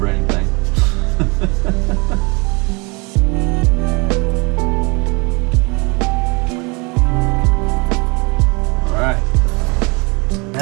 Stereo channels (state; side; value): quieter; left; 29.1 dB